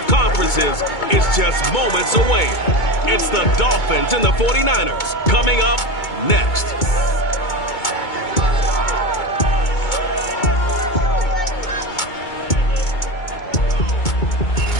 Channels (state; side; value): late; right; 2.2 ms